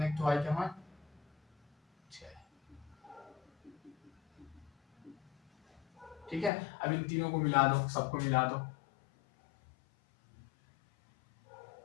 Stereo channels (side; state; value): right; drops out; at 6.5 s